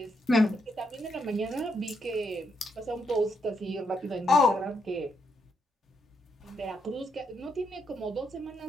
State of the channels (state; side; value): normal; both; correlation 0.78